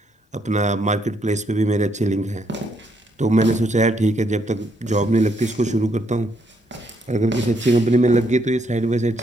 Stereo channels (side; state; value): both; normal; correlation 0.73